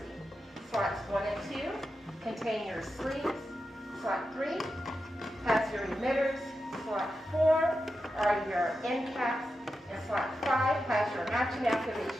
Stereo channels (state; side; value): normal; both; correlation 0.89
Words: Slots 1 and 2 contain your sleeves. Slot 3 has your emitters. Slot 4 are your end caps, and slot 5 has your matching